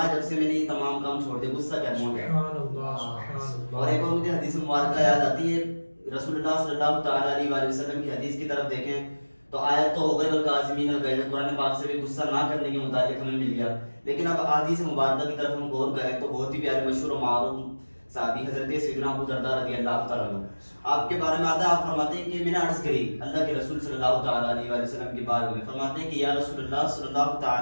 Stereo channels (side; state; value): both; inverted; correlation -1.00